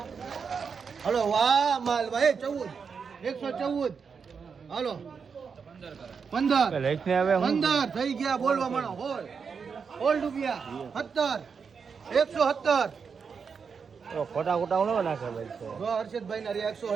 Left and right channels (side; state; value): left; quieter; 5.9 dB